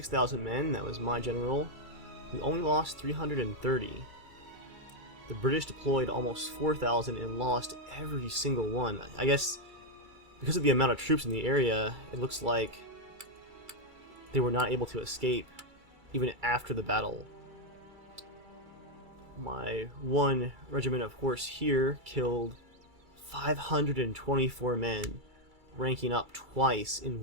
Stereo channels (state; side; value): late; left; 2.3 ms